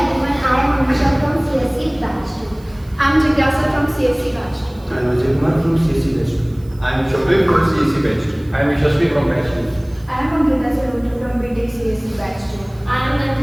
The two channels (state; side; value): noise; right; hiss, 28 dB below the sound